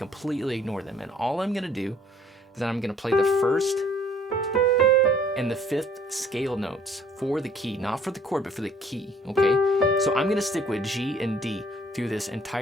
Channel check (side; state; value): both; normal; correlation 0.58